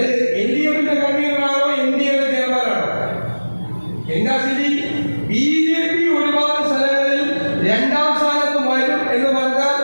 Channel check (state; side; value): inverted; both; correlation -1.00